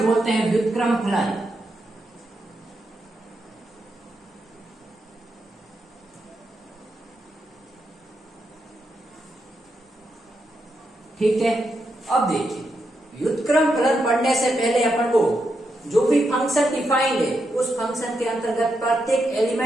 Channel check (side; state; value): both; normal; correlation 0.83